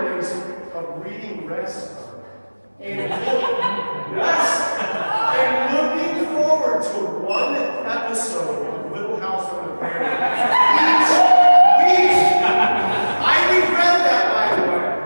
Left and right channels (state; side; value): inverted; both; correlation -1.00